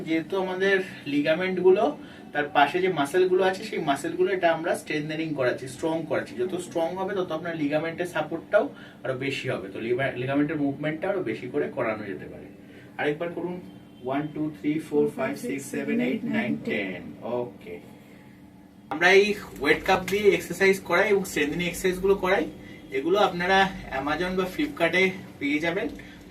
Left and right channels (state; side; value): identical; both; correlation 1.00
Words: যেহেতু আমাদের লিগামেন্ট গুলো তার পাশে যে মাসেল গুলো আছে সেই মাসেল গুলো এটা আমরা স্ট্রেংথেনিং করাচ্ছি, স্ট্রং করাচ্ছি। যত স্ট্রং হবে তত আপনার লিগামেন্টের সাপোর্টটাও আরো বেশি হবে, তো লিগামেন্টের মুভমেন্টটা আরো বেশি করে করানো যেতে পারে। আরেকবার করুন। 1 2 3 4 5 6 7 8 9 10, ওকে। আমরা এই ওয়েট কাপ দিয়ে এক্সারসাইজ করাই এবং স্ট্রেংথেনিং এক্সারসাইজ গুলো করাই। এগুলো আপনারা অ্যামাজন বা ফ্লিপকার্টে পেয়ে যাবেন।